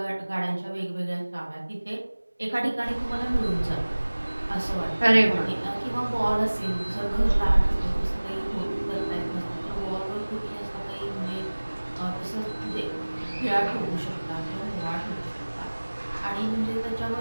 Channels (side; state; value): both; inverted; correlation -1.00